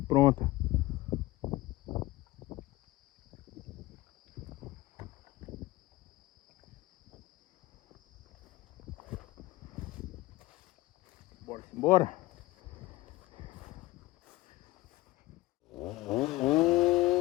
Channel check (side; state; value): right; quieter; 19.0 dB